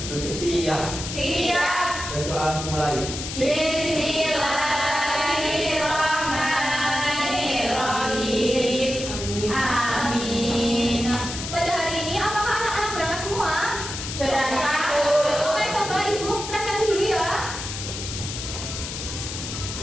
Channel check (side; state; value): left; noise; hiss, 7 dB below the sound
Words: Siap. Siap. Dan doa dimulai. Bismillahirrahmanirrahim. Amin. Pada hari ini apakah anak-anak berangkat semua? Berangkat. Oke, coba Ibu presentasi dulu ya.